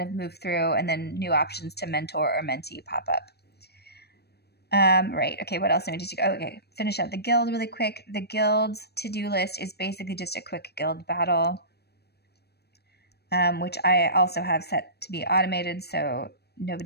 of move through, and then new options to mentor or mentee pop up. Right. Okay. What else do we need to go? Okay. Finish out the guild really quick. The guild's to-do list is basically just a quick guild battle, which I also have set to be automated. So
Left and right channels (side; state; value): right; late; 0.47 ms